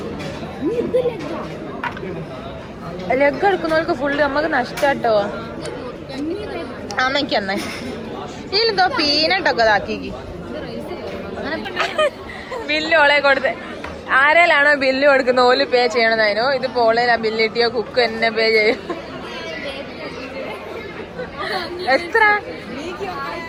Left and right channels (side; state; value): both; identical; correlation 1.00